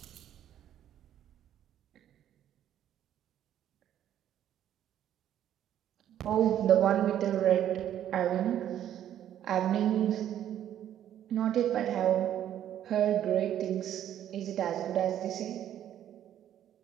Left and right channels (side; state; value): left; quieter; 10.9 dB